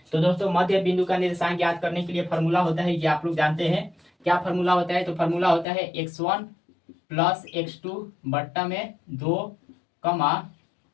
तो दोस्तों मध्य बिंदु का निर्देशांक ज्ञात करने के लिए फॉर्मूला होता है, ये आप लोग जानते हैं। क्या फॉर्मूला होता है, तो फॉर्मूला होता है x1 + x2 बट्टा में 2,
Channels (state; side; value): drops out; right; at 5.7 s